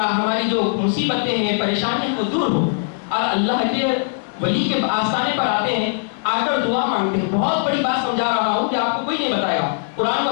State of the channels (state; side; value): silent; right; digital silence